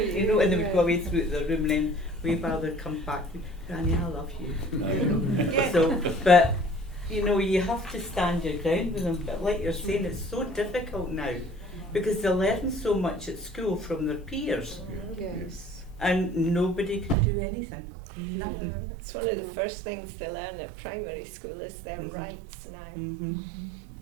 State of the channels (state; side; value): drops out; left; at 17.2 s